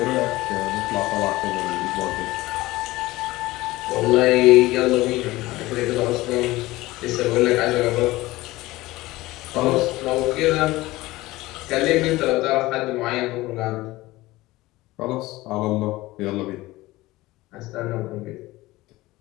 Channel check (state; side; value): quieter; right; 18.9 dB